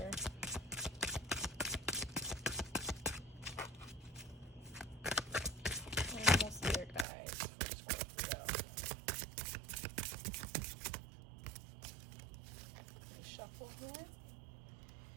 Animal spirit guides for Scorpio. Let me shuffle here.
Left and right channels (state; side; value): drops out; left; at 7.1 s